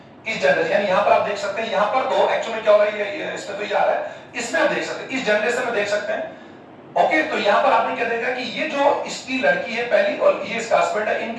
इस जनरेशन, यानी यहां पर आप देख सकते हैं, यहां पर तो एक्चुअली क्या हो रहा है, ये इसमें तो ये आ रहा है, इसमें आप देख सकते हैं, इस जनरेशन में देख सकते हैं, ओके। तो यहां पर आपने क्या देखा कि ये जो इसकी लड़की है पहली और ये इसका हस्बैंड है,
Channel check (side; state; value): both; identical; correlation 1.00